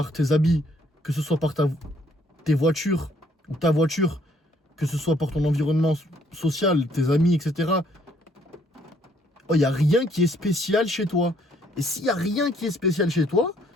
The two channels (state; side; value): normal; both; correlation 0.65